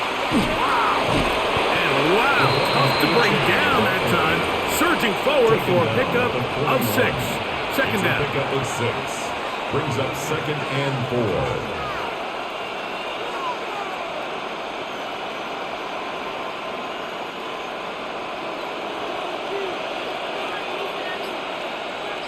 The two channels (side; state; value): both; identical; correlation 1.00